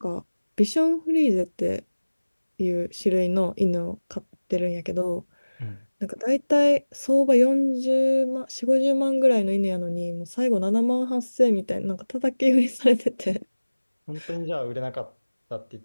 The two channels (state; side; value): inverted; both; correlation -1.00